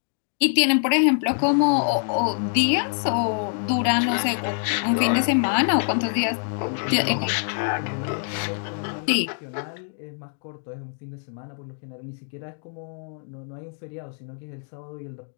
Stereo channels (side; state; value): right; silent; 60 dB below the other